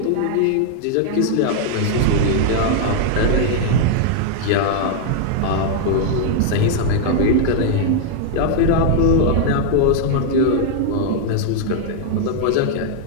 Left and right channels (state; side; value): different; both; correlation -0.01